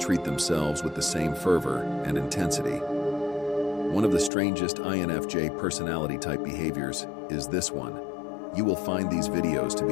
themselves with the same fervor and intensity. One of the strangest INFJ personality type behaviors is this one. You will find these videos to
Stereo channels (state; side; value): drops out; right; at 4.3 s